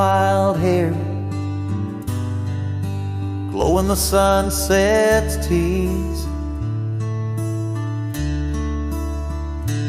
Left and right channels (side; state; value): both; identical; correlation 1.00